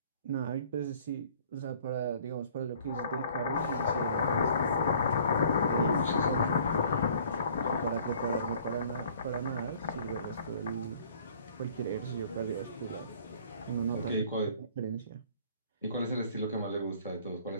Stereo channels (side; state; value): both; inverted; correlation -0.54